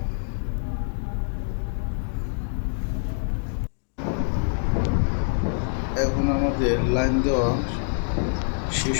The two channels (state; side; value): silent; right; 61 dB below the other